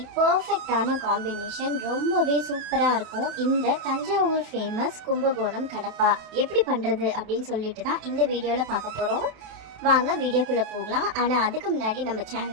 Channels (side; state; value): left; late; 27 ms